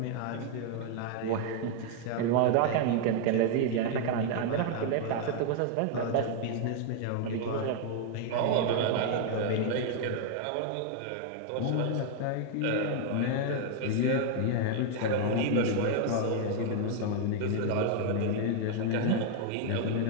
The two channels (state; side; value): different; both; correlation 0.00